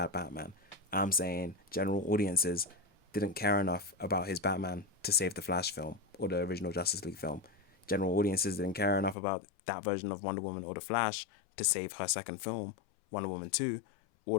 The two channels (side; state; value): right; drops out; at 9.2 s